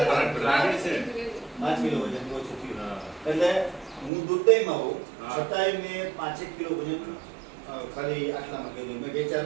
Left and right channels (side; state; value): left; drops out; at 4.1 s